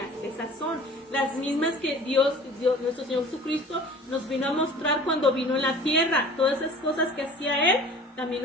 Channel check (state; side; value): normal; both; correlation 0.44